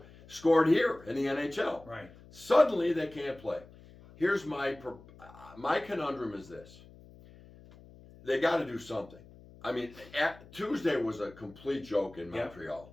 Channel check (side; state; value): left; noise; hum, 21 dB below the sound